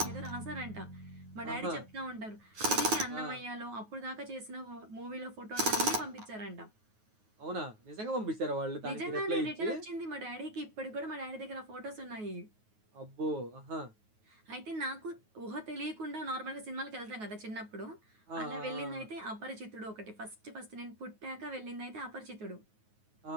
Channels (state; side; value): late; left; 9.4 ms